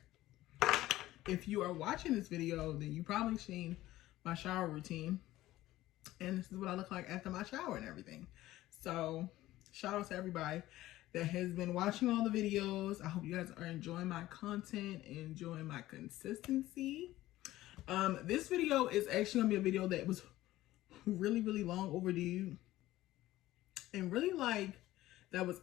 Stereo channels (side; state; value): right; quieter; 15.9 dB